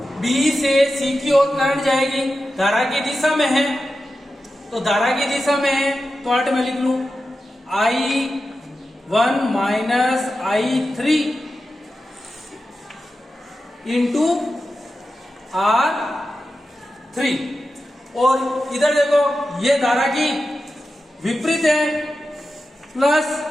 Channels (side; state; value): both; normal; correlation 0.92